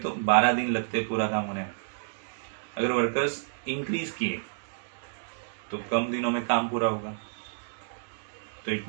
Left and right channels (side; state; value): left; silent; digital silence